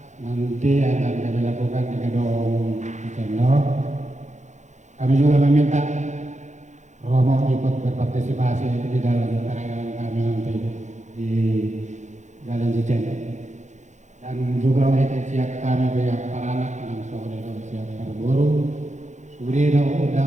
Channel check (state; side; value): late; left; 0.34 ms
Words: nanti yang akan kami lakukan di Gedung Cicendo. Kami juga meminta Romo ikut berpartisipasi di dalam perayaan kami nanti di Jalan Cicendo. Dan juga untuk siap kami pihak para anak langsung itu siap berburu. Sudah ada